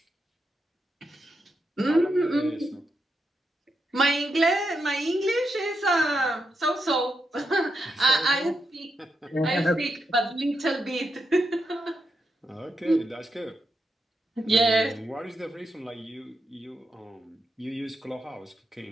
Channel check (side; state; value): both; normal; correlation 0.84